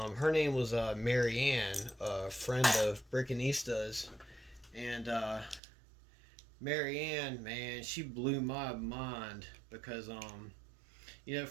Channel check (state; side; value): drops out; left; at 5.6 s